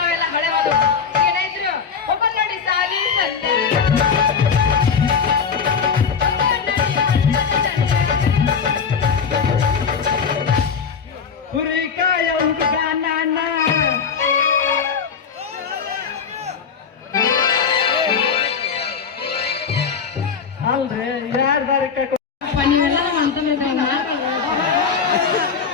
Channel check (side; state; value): right; quieter; 6.2 dB